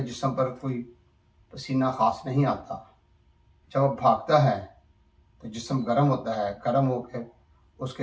जिस्म पर कोई पसीना खास नहीं आता। जब वो भागता है तो जिस्म गर्म होता है, गर्म होकर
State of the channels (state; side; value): identical; both; correlation 1.00